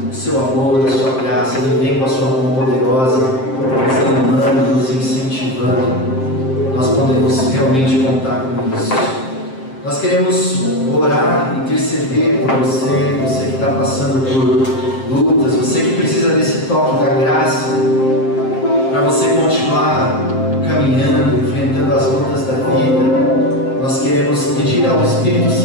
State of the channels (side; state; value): right; late; 7.6 ms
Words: o seu amor, a sua graça. Ele vem com a sua mão poderosa, nos animando, nos incentivando. Nós podemos realmente contar com isso. Nós queremos orar, interceder por você, você que está passando por lutas, você que precisa desse toque da graça, para você continuar caminhando, enfrentando as lutas da vida. Nós queremos pedir ao Espírito